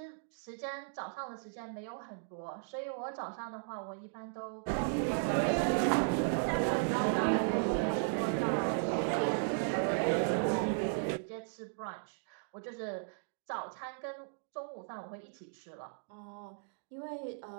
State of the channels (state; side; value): silent; left; digital silence